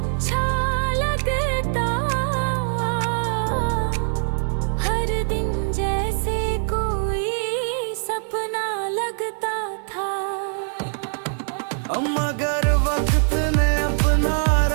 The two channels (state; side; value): silent; left; digital silence